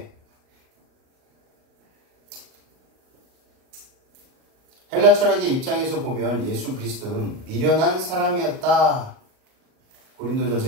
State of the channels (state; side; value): late; left; 38 ms